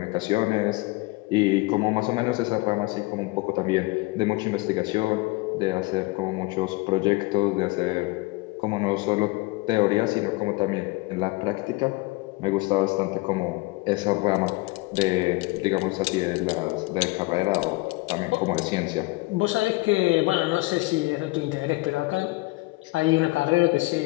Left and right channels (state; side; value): quieter; right; 23.1 dB